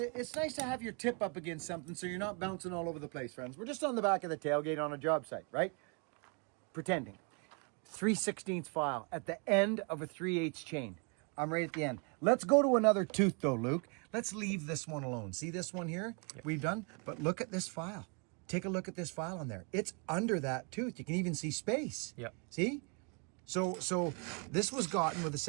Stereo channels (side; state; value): left; quieter; 36.0 dB